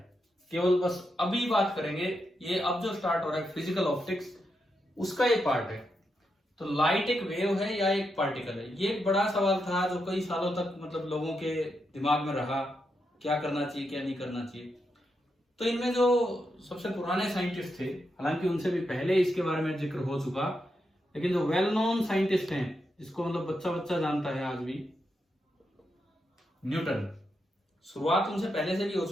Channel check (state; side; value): normal; both; correlation 0.84